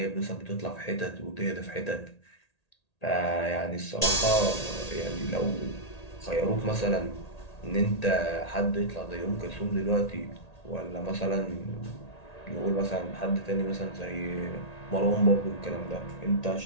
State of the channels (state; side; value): late; right; 1.8 ms